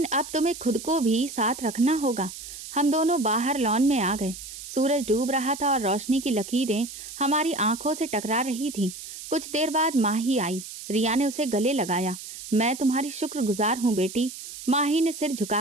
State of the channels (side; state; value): right; noise; hiss, 12 dB below the sound